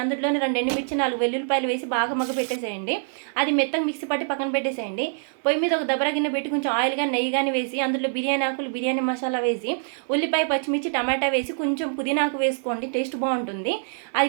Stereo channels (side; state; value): left; silent; 62 dB below the other